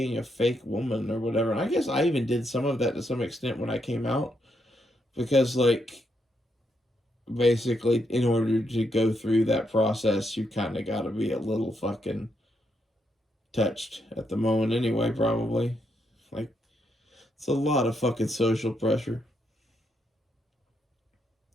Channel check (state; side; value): normal; both; correlation 0.79